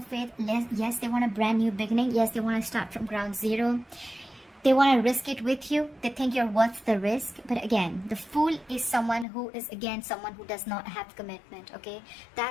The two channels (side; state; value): right; drops out; at 9.2 s